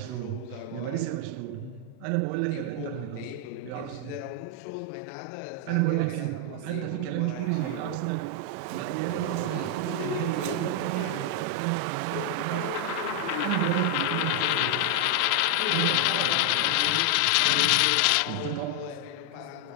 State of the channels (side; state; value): both; different; correlation 0.00